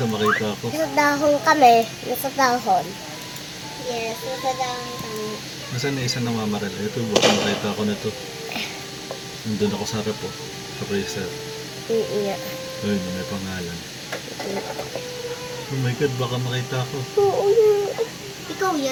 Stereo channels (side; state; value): both; identical; correlation 1.00